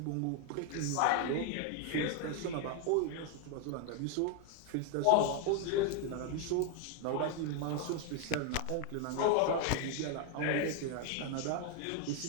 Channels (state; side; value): different; both; correlation 0.01